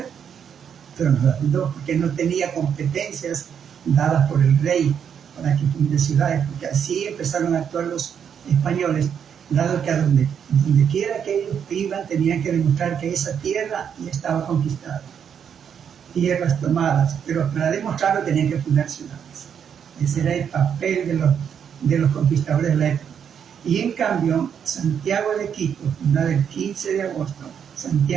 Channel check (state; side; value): quieter; left; 7.9 dB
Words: pero no la fundó porque no tenía competencias dadas por el rey para que funde ciudades, porque así empezaron a actuar los españoles, dado que a donde quiera que ellos iban tenían que demostrar que esa tierra ya estaba conquistada, tierras tomadas, pero para demostrarlo tenían que fundar ciudades. Ese era el papel de los conquistadores de la época. Y en cambio, Santiago de Quito, fundada el 15 de agosto,